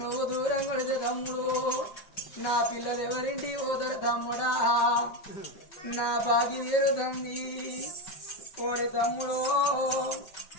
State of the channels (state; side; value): late; right; 5.3 ms